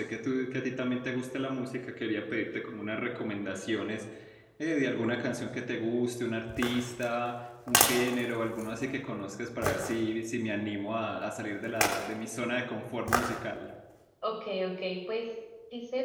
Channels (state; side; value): identical; both; correlation 1.00